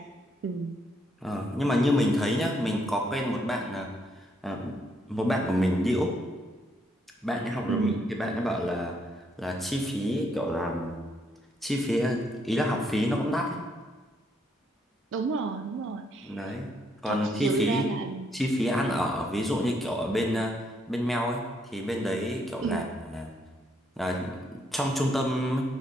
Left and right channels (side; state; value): both; normal; correlation 0.73